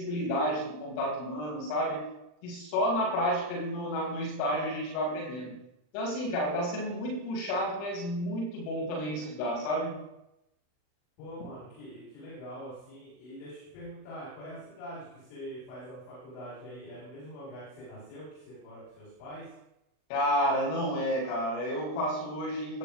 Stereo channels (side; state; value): right; late; 40 ms